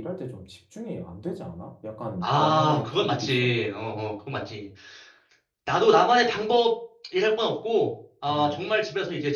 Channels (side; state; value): both; identical; correlation 1.00